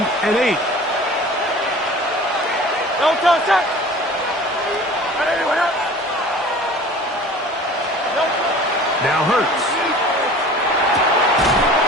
and 8. Now Hurts.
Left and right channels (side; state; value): both; normal; correlation 0.43